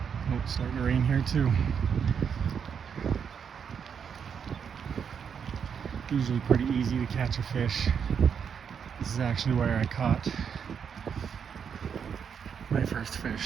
Oh, it's starting to rain here too. Usually pretty easy to catch a fish. This is actually where I caught my first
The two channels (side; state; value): left; quieter; 7.1 dB